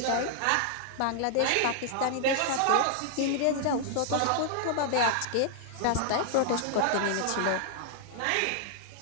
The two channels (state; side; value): different; both; correlation 0.00